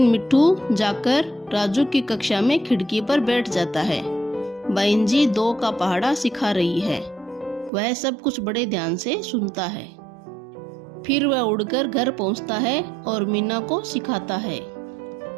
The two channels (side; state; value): left; drops out; at 7.7 s